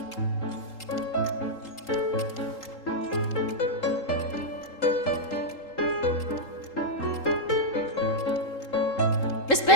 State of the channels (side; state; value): right; late; 3.8 ms